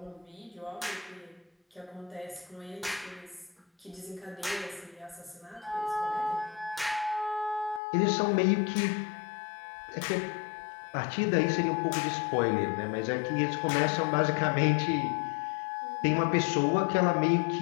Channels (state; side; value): drops out; right; at 7.8 s